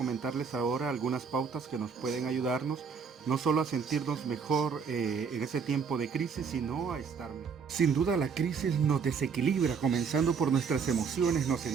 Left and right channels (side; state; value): left; quieter; 6.0 dB